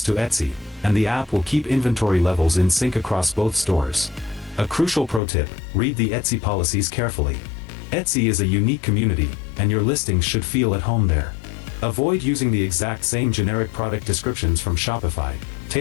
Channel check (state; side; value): drops out; right; at 5.2 s